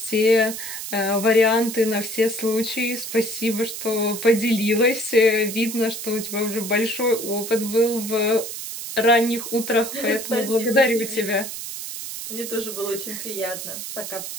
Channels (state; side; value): noise; right; hiss, 8 dB below the sound